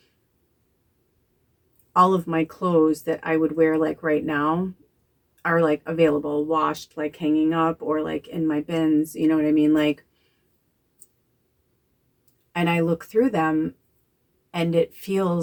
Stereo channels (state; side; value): identical; both; correlation 1.00